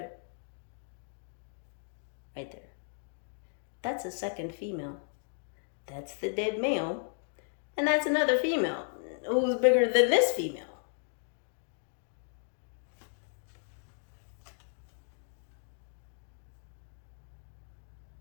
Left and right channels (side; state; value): right; silent; digital silence